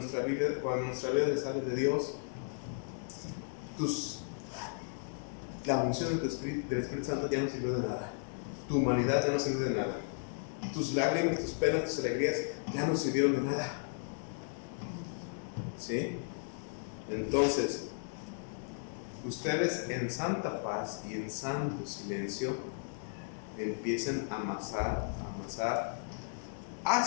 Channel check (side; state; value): right; silent; digital silence